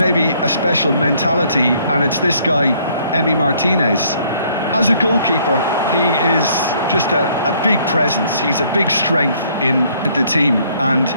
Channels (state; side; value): inverted; both; correlation -0.64